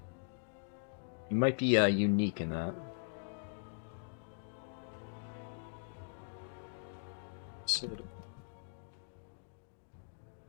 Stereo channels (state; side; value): silent; right; digital silence